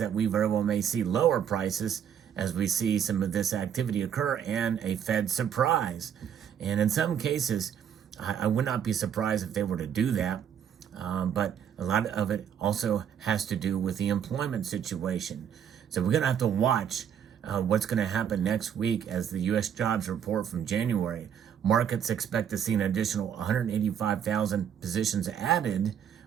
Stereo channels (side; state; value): left; quieter; 8.6 dB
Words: we very well may see lower prices as we see some of this activity occur and a Fed surprise. And in some cases, I would not be surprised if they were to do that. But a lot of it also has to do with the employment situation. So we're going to have to watch what's going to happen next week as the U.S. jobs report from January. Markets expect to see an additional 185,000 positions added,